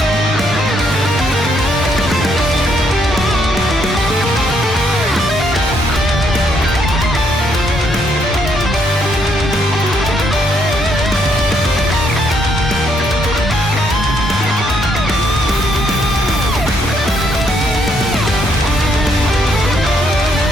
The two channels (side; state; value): both; normal; correlation 0.72